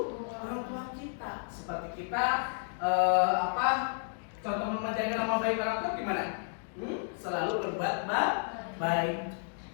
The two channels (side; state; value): right; silent; digital silence